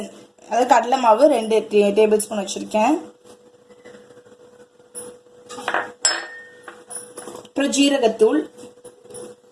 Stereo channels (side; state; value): both; identical; correlation 1.00